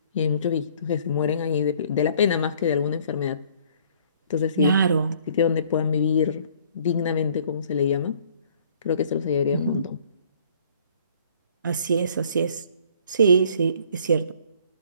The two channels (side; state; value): both; inverted; correlation -0.57